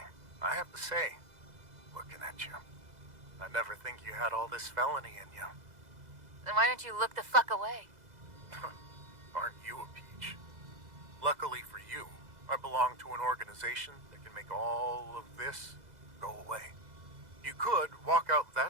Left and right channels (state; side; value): late; left; 2.0 ms